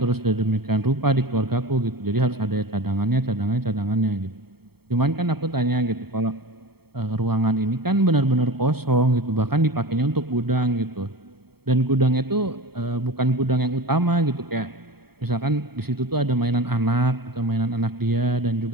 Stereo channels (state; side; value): late; left; 0.96 ms